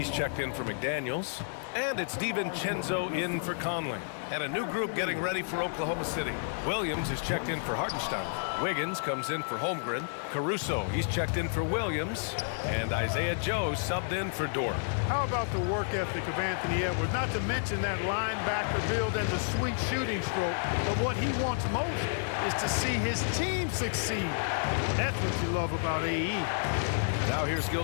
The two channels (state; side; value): silent; right; digital silence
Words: checked in for McDaniels. And it's DiVincenzo in for Conley. And a new group getting ready for Oklahoma City. Williams is checked in for Hartenstein. Wiggins comes in for Holmgren. Caruso, he's checked in for Williams. And Isaiah Joe subbed in for Dort. How about the work ethic of Anthony Edwards? Not to mention that linebacker build and the sweet shooting stroke. But what he wants most is to see his team succeed. That's what you love about AE. Now here's